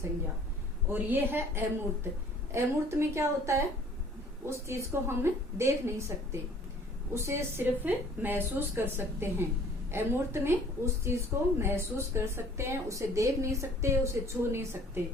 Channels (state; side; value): normal; both; correlation 0.53